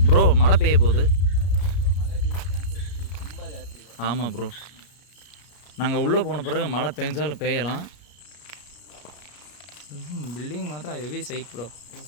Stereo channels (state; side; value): late; right; 33 ms